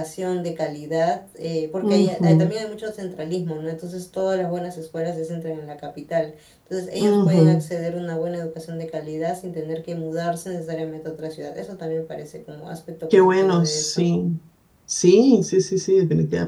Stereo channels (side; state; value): both; identical; correlation 1.00